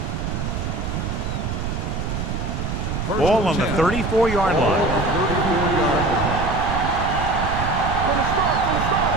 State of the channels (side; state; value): right; noise; rumble, 3 dB below the sound